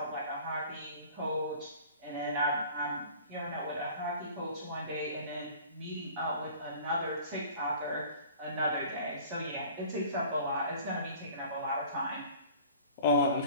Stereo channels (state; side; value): inverted; both; correlation -0.46